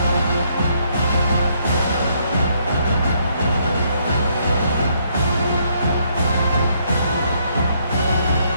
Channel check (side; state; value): both; inverted; correlation -0.71